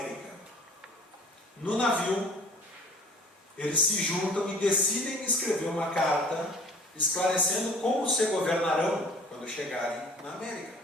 No navio, eles se juntam e decidem escrever uma carta esclarecendo como se governarão quando chegarem na América,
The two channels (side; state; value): both; normal; correlation 0.49